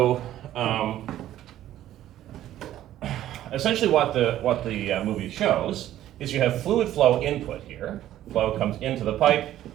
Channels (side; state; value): left; quieter; 12.9 dB